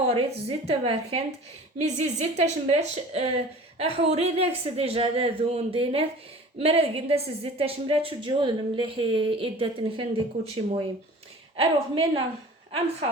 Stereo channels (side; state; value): both; normal; correlation 0.43